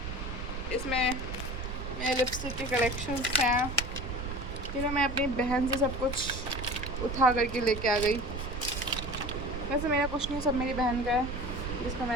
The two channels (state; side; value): noise; right; rumble, 6 dB below the sound